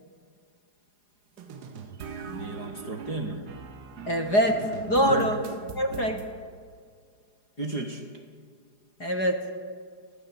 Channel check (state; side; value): late; right; 4.9 ms